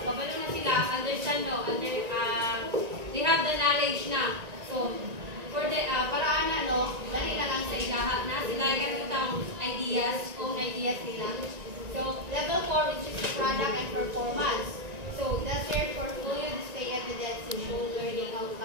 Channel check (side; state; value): left; late; 1.9 ms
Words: kabalo na sila, understand no, they have the knowledge na. So, for the, paraan na, no, dali na lang sa ilaha na sila ganitong ideas, own ideas nila. So, level 4, which is the product and performance. So, that's your portfolio display evidence to show learning